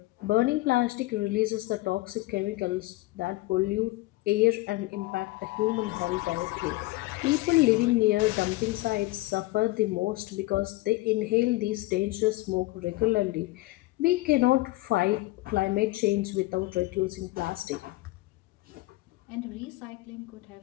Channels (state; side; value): quieter; right; 20.1 dB